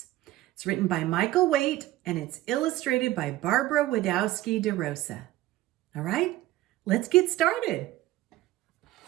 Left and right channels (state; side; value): quieter; left; 16.0 dB